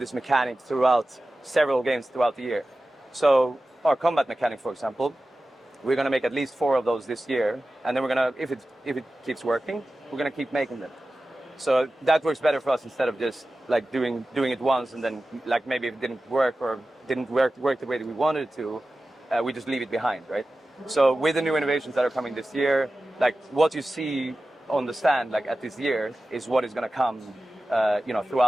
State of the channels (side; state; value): both; normal; correlation 0.95